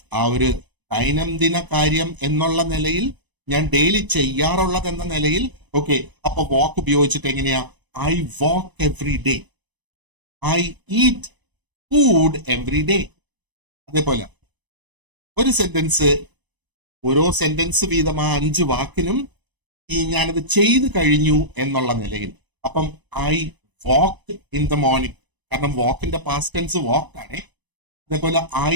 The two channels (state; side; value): late; left; 1.0 ms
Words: ആ ഒരു ദൈനംദിന കാര്യം എന്നുള്ള നിലയിൽ, ഞാൻ ഡെയിലി ചെയ്യാറുള്ളത് എന്ന നിലയിൽ. ഓക്കെ, അപ്പൊ വാക്ക് ഉപയോഗിച്ചിട്ട് എങ്ങനെയാ? I walk every day, I eat food every day. അതേപോലെ ഒരു സെന്റൻസ്, ഓരോ സെന്റൻസ് വീതം ആ 5 വാക്കിനും ഞാനത് ചെയ്തു കഴിഞ്ഞു എന്നുള്ള നിലയിൽ. അപ്പം I walk in the morning, കാരണം വാക്കിന്റെ പാസ്റ്റ് ടെൻസ് വാക്ക് ആണ്. അതേപോലെ ഐ